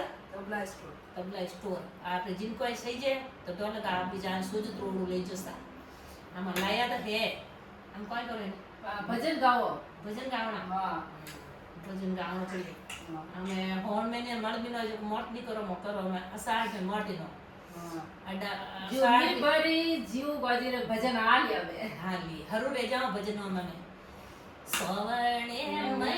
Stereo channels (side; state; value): both; identical; correlation 1.00